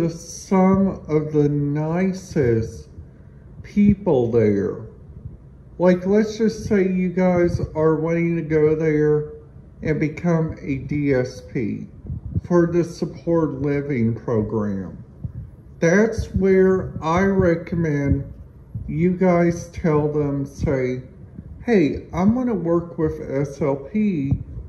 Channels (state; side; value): identical; both; correlation 1.00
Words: some of the nicest people there. Like, let's just say you guys are wanting to go there and become a DSP for the support living program. That's where I recommend you guys tell them, say, hey, I'm going to work with SLP,